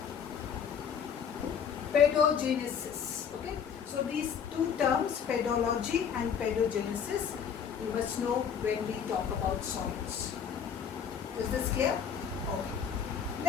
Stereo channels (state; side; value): quieter; right; 7.5 dB